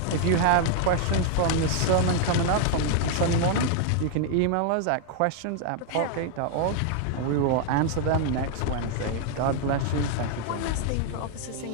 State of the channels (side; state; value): both; different; correlation 0.00